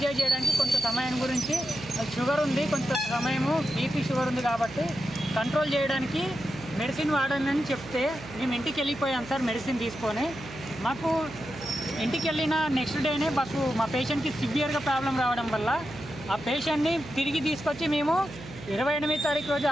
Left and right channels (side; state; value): right; noise; hum, 15 dB below the sound